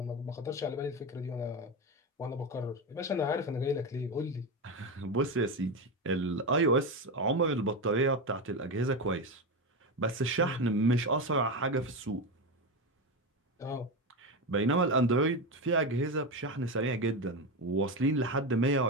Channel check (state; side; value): normal; both; correlation 0.16